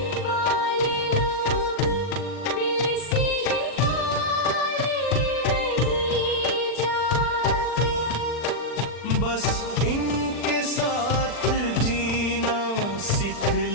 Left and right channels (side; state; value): right; late; 40 ms